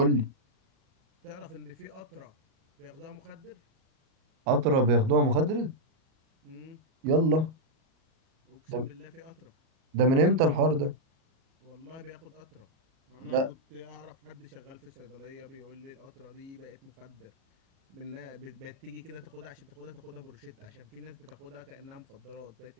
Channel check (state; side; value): late; left; 38 ms